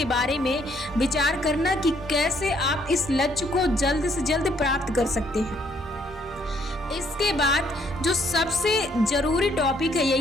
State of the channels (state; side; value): normal; both; correlation 0.68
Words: बारे में विचार करना कि कैसे आप इस लक्ष्य को जल्द से जल्द प्राप्त कर सकते हैं। इसके बाद जो सबसे जरूरी टॉपिक है